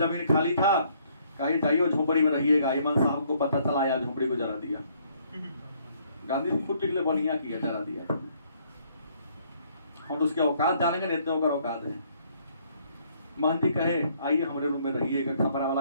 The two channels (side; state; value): both; inverted; correlation -0.66